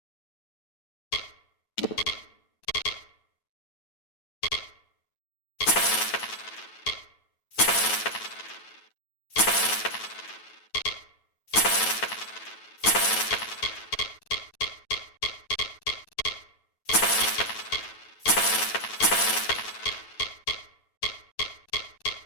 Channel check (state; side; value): late; right; 9.2 ms